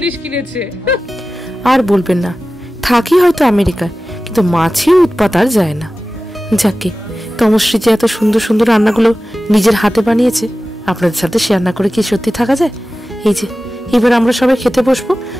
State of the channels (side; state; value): both; normal; correlation 0.95